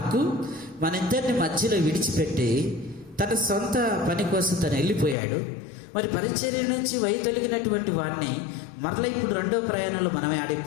మన ఇద్దరిని మధ్యలో విడిచిపెట్టి తన సొంత పని కోసం తను వెళ్ళిపోయాడు. మరి పరిచర్య నుంచి వైదొలిగినటువంటి వాడిని మరలా ఇప్పుడు రెండవ ప్రయాణంలో మనమే ఆడ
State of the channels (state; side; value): drops out; right; at 5.2 s